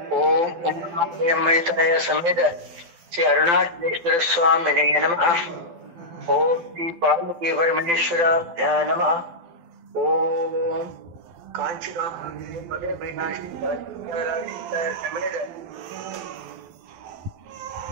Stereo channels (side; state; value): left; late; 12 ms